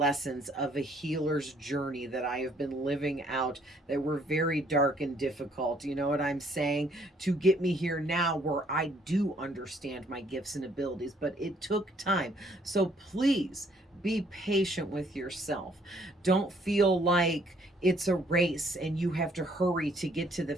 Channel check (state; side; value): normal; both; correlation 0.64